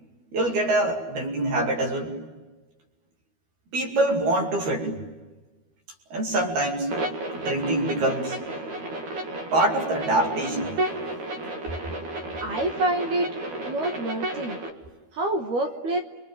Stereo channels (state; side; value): late; left; 13 ms